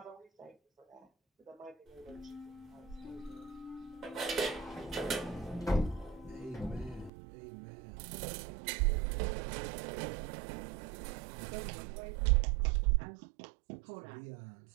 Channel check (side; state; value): left; drops out; at 7.1 s